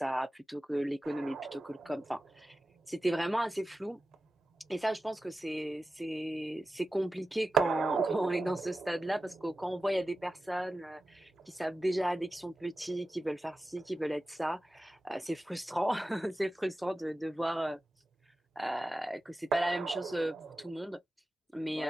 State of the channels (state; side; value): normal; both; correlation 0.94